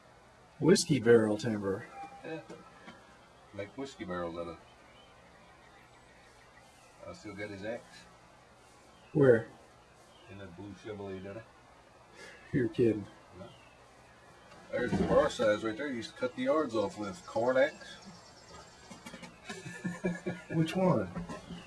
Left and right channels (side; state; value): both; identical; correlation 1.00